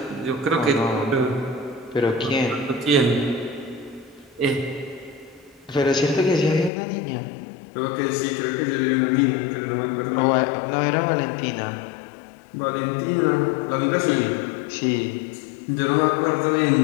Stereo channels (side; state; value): right; drops out; at 6.7 s